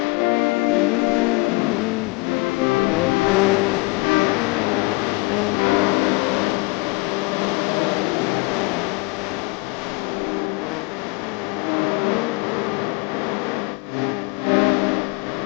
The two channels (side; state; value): right; quieter; 27.7 dB